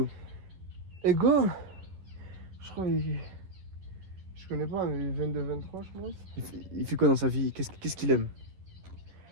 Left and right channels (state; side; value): late; left; 11 ms